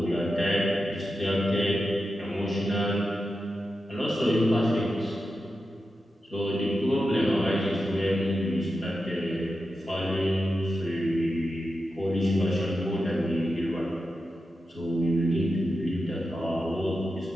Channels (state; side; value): normal; both; correlation 0.90